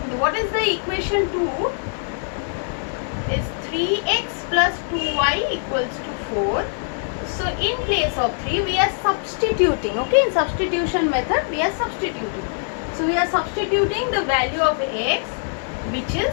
what is the equation 2? Is 3x plus 2y equals to 4. So in place of 3, we are substituting. Okay, in substitution method, we are substituting. So we are substituting the value of x which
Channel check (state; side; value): silent; right; 62 dB below the other